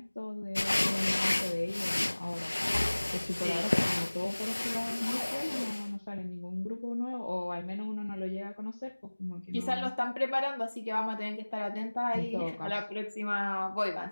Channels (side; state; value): both; inverted; correlation -1.00